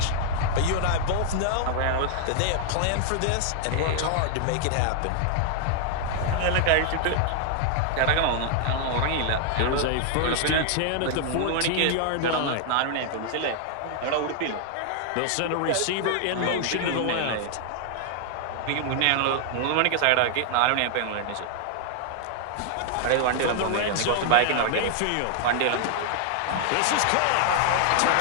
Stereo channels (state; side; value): different; both; correlation 0.00